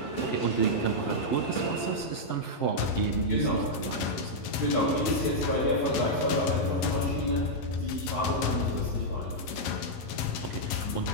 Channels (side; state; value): right; late; 11 ms